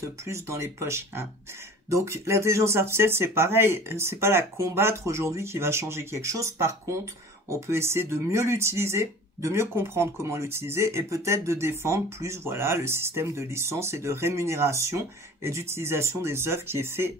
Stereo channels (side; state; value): both; normal; correlation 0.42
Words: plus dans les poches. Hein. Donc l'intelligence artificielle, c'est pareil. C'est pas la combattre aujourd'hui qui va changer quelque chose. Par contre, on peut essayer de mieux l'utiliser, de mieux comprendre comment l'utiliser et peut-être de défendre plus voilà, le système de licence et de rémunération et d'utilisation des œuvres qui est fait